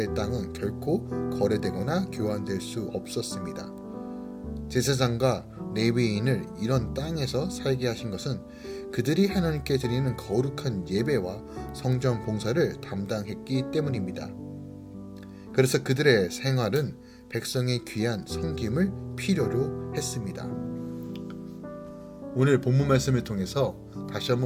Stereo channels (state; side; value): identical; both; correlation 1.00